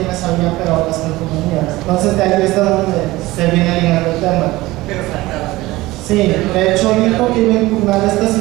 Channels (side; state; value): left; quieter; 19.0 dB